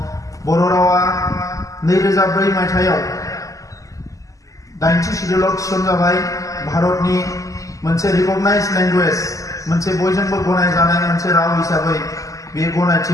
बर' रावा 2004 मायथाइयाव 80 शिड्युलाव थिसनजाबाय भारतनि मोनसे रिकगनाइज लेंगुवेज मोनसे बयजोंबो गनायजानाय मोनसे राव हिसाबै बे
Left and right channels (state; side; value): late; right; 0.16 ms